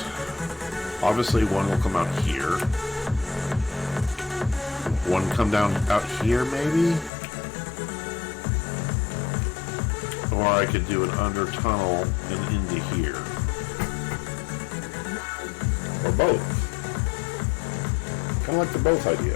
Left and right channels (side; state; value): right; drops out; at 7.1 s